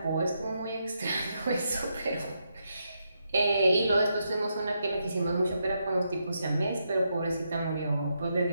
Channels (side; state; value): both; inverted; correlation -0.82